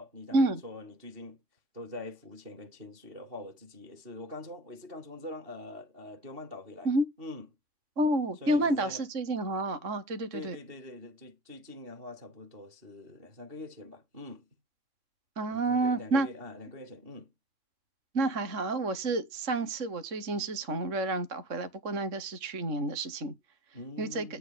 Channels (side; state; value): left; late; 3.6 ms